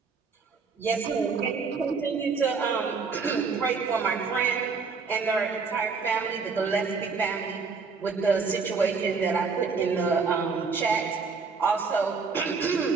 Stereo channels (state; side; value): quieter; left; 4.9 dB